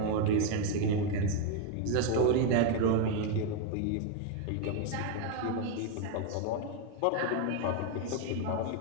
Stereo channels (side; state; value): both; different; correlation 0.01